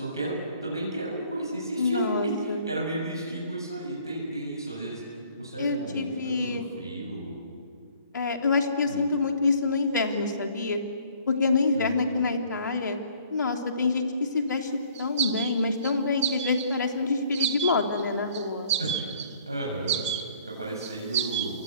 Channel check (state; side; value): inverted; both; correlation -0.58